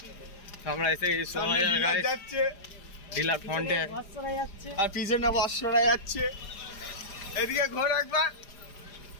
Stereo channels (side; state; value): right; late; 4.9 ms